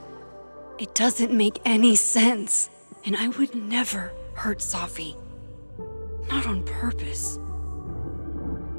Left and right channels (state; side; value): inverted; both; correlation -1.00